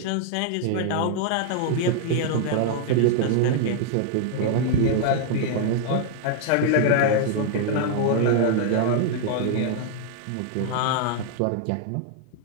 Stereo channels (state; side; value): different; both; correlation 0.00